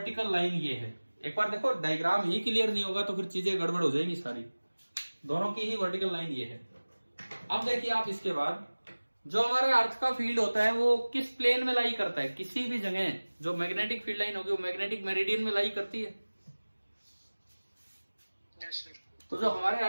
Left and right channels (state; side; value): inverted; both; correlation -1.00